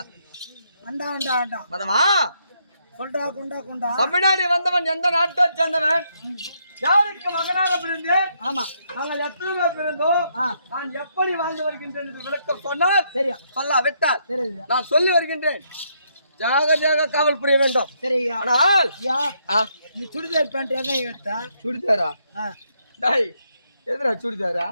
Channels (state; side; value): inverted; both; correlation -0.75